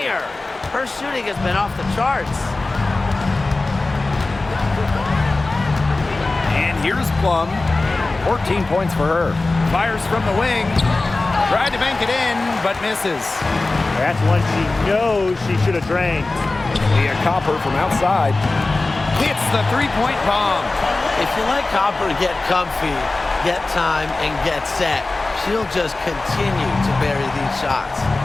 Her shooting has been off the charts. And here's Plum. 14 points for her. Fires from the wing. Tried to bank it in, but misses. That's one she knows she should have drained. Leah Copper from outside. Hits the three-point bomb. If you let Copper get comfy, get time, and get set, she'll just continue to bury these shots.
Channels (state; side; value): quieter; right; 3.3 dB